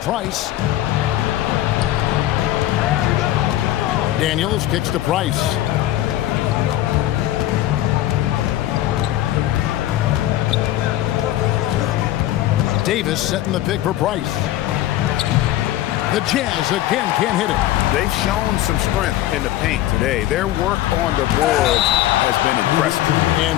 Daniels kicks to Price. Davis setting the pick for Price. The Jazz again can't hit it. They've shown some strength in the paint today. Their work on the boards has been impressive. And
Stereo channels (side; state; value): right; quieter; 14.0 dB